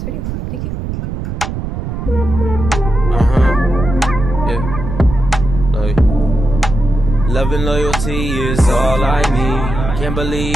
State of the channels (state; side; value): noise; right; rumble, 5 dB below the sound